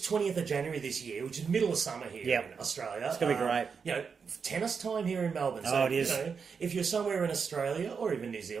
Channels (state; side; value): quieter; left; 5.9 dB